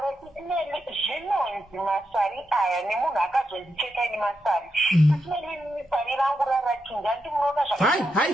Sisimeli, zvinonzi masari aya nemunhu akazondicheka ini masari. Sisimeli, sari rangu rarachinja, ndimunoona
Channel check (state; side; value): normal; both; correlation 0.85